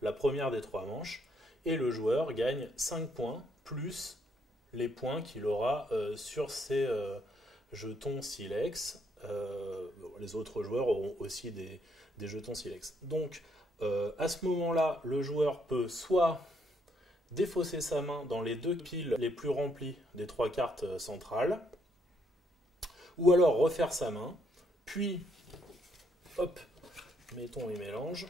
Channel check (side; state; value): both; normal; correlation 0.72